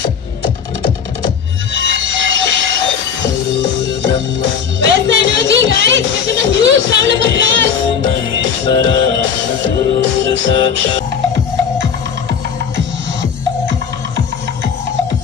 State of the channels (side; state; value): right; quieter; 7.0 dB